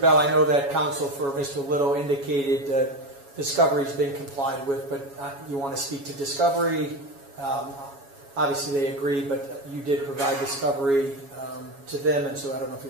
I know that counsel for Mr. Little indicated discovery has been complied with, but you want to speak to discovery. Obviously they agree, but you did provide discovery to them, and so I don't know if you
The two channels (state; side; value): late; left; 7.2 ms